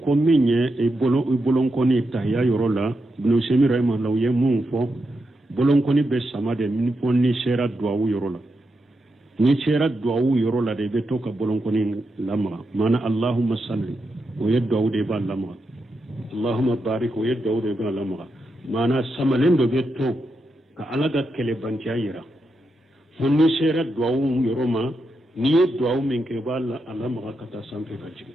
ko minye e bolon koni tahya yorola ibn Semi rahimahullah ye mun fo bolon koni be samade min fo ni shera duawu yorola ni shera duawu yorola de be to ka bolon koni lamra mana allahumma salli o yeddu de ba lamra allahumma barik o yeddu de ba lamra mana samalen do be to ka alaga kele bantiya yira fo ni shera duawu yoroma ni duawu min ke ba lamra kata sampe ka ci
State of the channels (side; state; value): both; normal; correlation 0.85